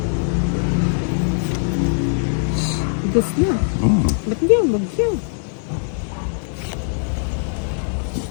Dos na. Ba't hindi yung bagyo?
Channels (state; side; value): silent; right; 65 dB below the other